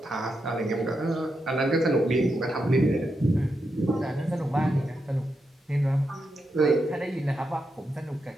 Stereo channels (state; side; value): normal; both; correlation 0.85